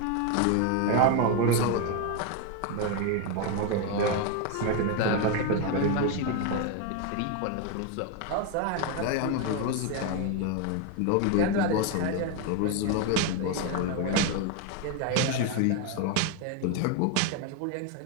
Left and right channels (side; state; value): both; different; correlation 0.01